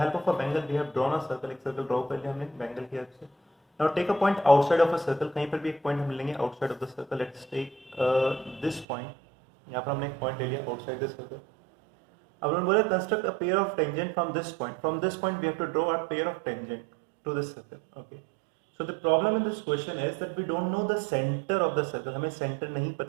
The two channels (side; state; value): left; drops out; at 8.8 s